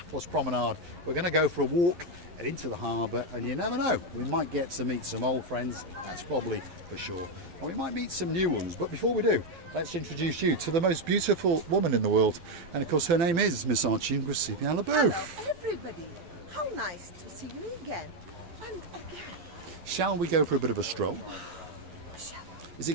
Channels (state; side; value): late; left; 11 ms